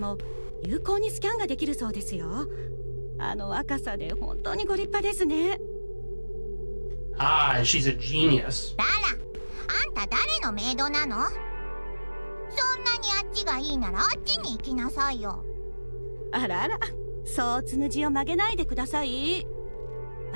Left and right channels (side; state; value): both; inverted; correlation -1.00